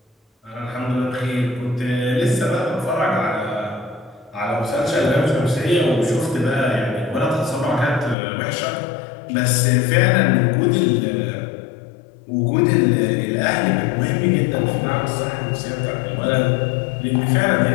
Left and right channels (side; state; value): right; drops out; at 8.2 s